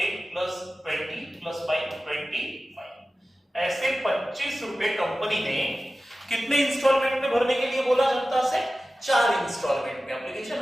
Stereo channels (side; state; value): both; normal; correlation 0.95